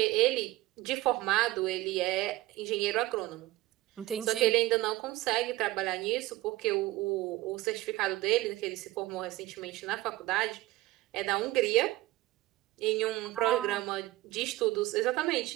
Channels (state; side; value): quieter; left; 17.9 dB